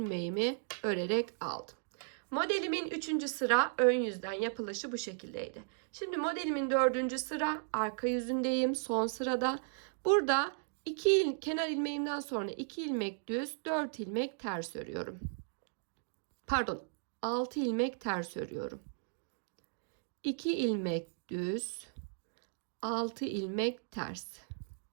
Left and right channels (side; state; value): left; silent; digital silence